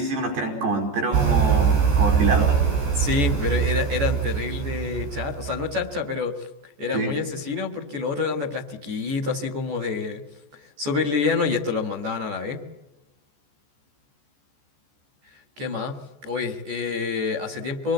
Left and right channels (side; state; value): left; late; 14 ms